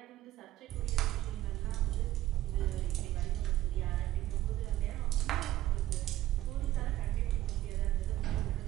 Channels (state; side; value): quieter; left; 14.8 dB